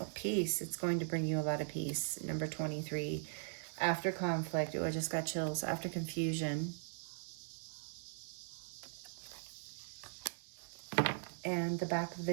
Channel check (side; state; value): left; silent; digital silence